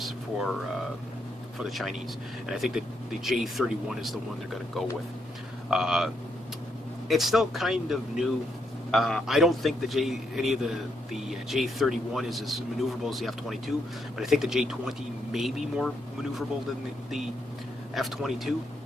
for the Chinese, and I think that the J-31 is the one they're going to go with. It's still kind of new. I don't think any of the J-31 is as maneuverable as the F-22, but I think the J-20 may be more maneuverable than the F-22.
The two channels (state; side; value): normal; both; correlation 0.78